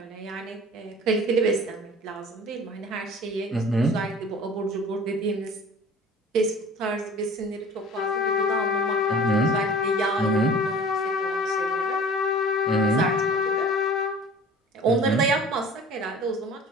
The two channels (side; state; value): both; normal; correlation 0.44